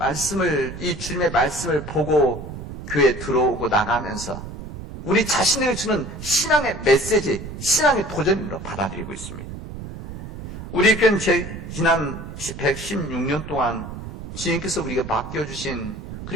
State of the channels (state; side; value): noise; right; rumble, 11 dB below the sound